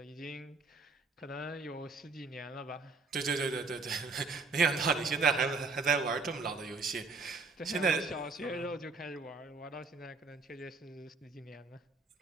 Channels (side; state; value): left; quieter; 3.9 dB